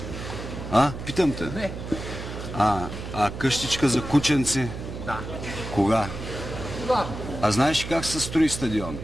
Питам те. Не. А къщичка за кученци? Да. Кога? Да. А знаеш как се строи стадион?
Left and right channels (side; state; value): right; noise; hum, 8 dB below the sound